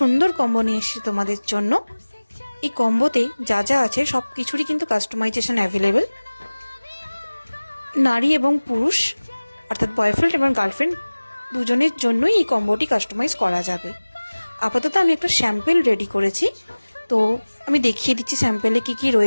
সুন্দর কম্বো নিয়ে এসেছি তোমাদের জন্য। এই কম্বোতে যা যা আছে সব কিছুরই কিন্তু কাস্টমাইজেশন অ্যাভেলেবেল। নারী এবং পুরুষ অর্থাৎ বয়ফ্রেন্ড এবং গার্লফ্রেন্ড দুজনের জন্যই এই কম্বোটি কাস্টমাইজ করা যাবে। আপাতত আমি একটা স্যাম্পেল রেডি করেছি, তো আমি দেখিয়ে দিচ্ছি স্যাম্পেলে কি কি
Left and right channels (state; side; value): inverted; both; correlation -1.00